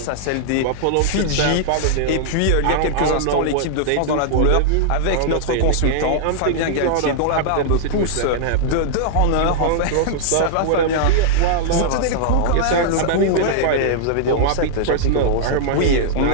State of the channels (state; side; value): different; both; correlation -0.01